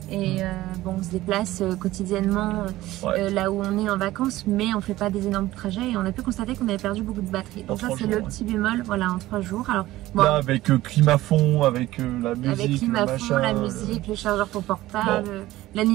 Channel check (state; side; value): quieter; left; 16.5 dB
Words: Et bon, on se déplace quotidiennement là où on est en vacances, mais on fait pas des énormes trajets et on a pu constater qu'on avait perdu beaucoup de batterie. Donc ça c'est le petit bémol, voilà, en 3 jours. Alors bon, là avec climat fond, avec la musique, avec climat fond, la musique, le chargeur pour portable,